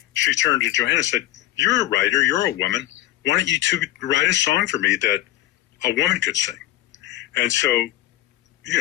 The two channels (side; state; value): right; quieter; 14.9 dB